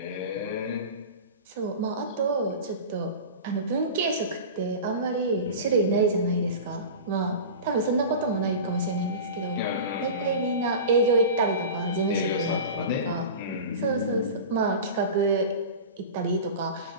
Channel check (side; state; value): both; inverted; correlation -0.31